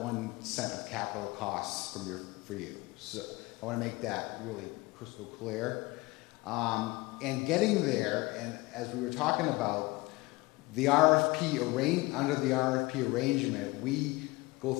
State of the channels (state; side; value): quieter; right; 22.5 dB